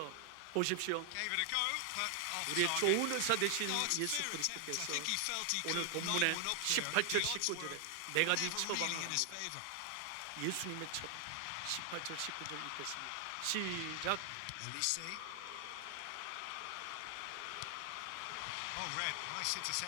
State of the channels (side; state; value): both; different; correlation 0.00